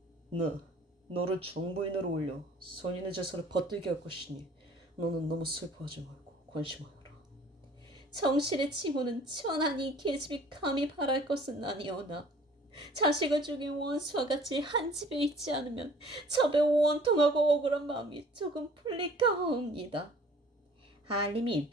너를 정부인으로 올려 선인의 제사를 받들게 할 것이니 너는 너무 슬퍼하지 말고 관심하여라. 정실의 칭호는 천하니 계집이 감히 바랄 것은 아니오나 자식을 죽인 원수와 같이 한 집에 있지 않으면 첩에 원통하고 억울한 마음이 조금 풀릴까 하옵니다. 한림이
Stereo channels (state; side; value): normal; both; correlation 0.52